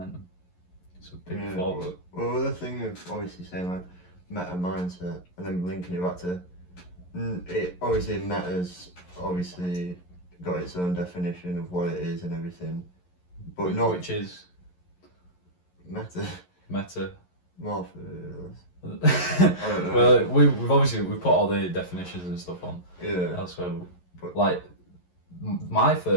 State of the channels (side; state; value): right; late; 11 ms